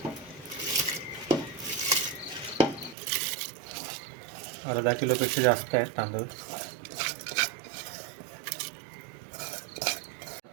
अर्धा किलोपेक्षा जास्त आहेत तांदूळ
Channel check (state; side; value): drops out; left; at 3.0 s